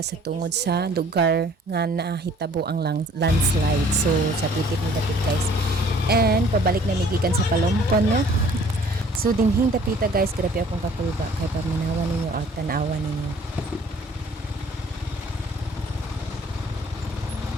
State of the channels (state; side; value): normal; both; correlation 0.55